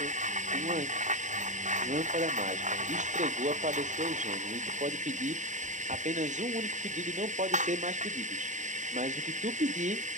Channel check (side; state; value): left; late; 0.35 ms